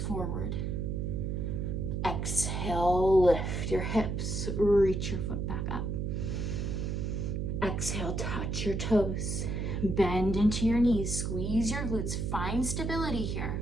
Exhale, lift your hips. Reach your foot back up. Exhale, touch your toes. Bend into your knees. Squeeze your glutes. Find stability here.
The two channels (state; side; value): noise; right; hum, 1 dB below the sound